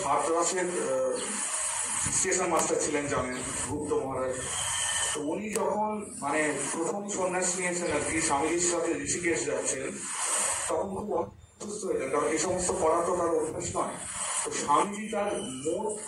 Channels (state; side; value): identical; both; correlation 1.00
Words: হাতরাসের স্টেশন মাস্টার ছিলেন, জানেন, গুপ্ত মহারাজ। তো উনি যখন মানে প্রথম সন্ন্যাস নিয়েছেন আর কি, স্বামীজির সাথে ঋষিকেশ যাচ্ছেন, তখন খুব অসুস্থ হয়েছেন, কারণ এই সমস্ত করা তো তার অভ্যাস নয়। তো স্বামীজি তার